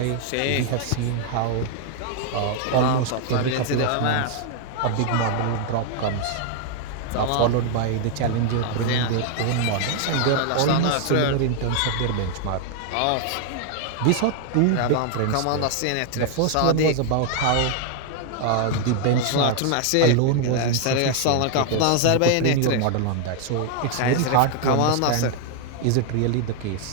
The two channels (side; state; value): both; different; correlation 0.00